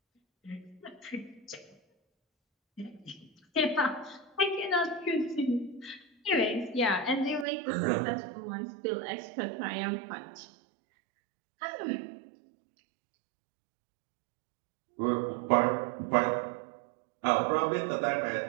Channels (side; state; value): left; drops out; at 7.5 s